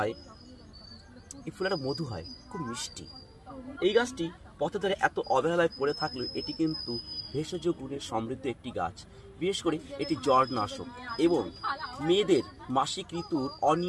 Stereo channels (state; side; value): identical; both; correlation 1.00